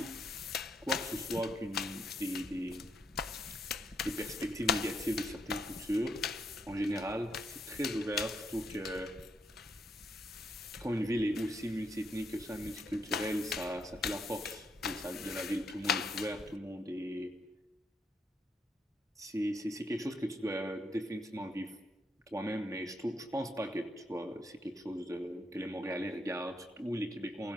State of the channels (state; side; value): normal; both; correlation 0.76